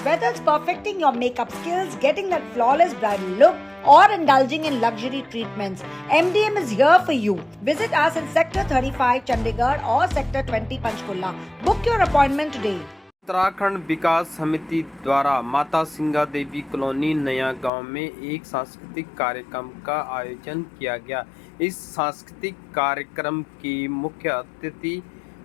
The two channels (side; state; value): right; drops out; at 17.7 s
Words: Whether it's perfecting your makeup skills, getting that flawless bridal look, or indulging in luxury treatments, MDM is here for you. Visit us in Sector 35 Chandigarh or Sector 20 Panchkulla. Book your appointment today. Uttarakhand विकास समिति द्वारा माता सिंगा देवी colony नया गांव में एक सांस्कृतिक कार्यक्रम का आयोजन किया गया। इस सांस्कृतिक कार्यक्रम के मुख्य अतिथि